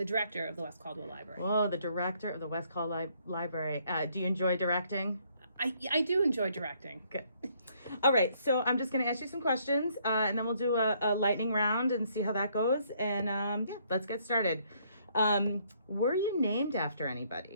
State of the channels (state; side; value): inverted; both; correlation -0.68